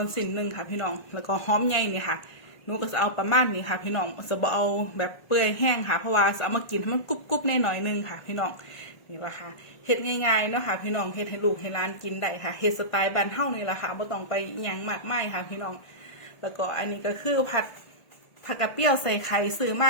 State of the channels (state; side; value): late; right; 1.5 ms